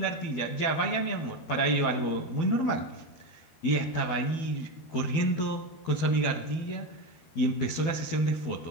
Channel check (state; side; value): late; right; 12 ms